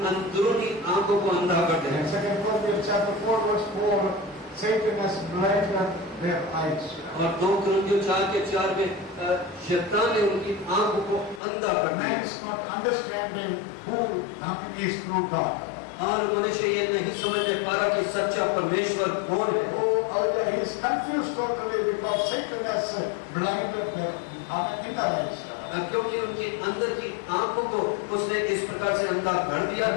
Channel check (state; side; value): drops out; right; at 11.4 s